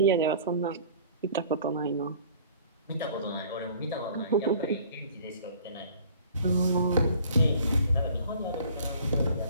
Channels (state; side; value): inverted; both; correlation -0.50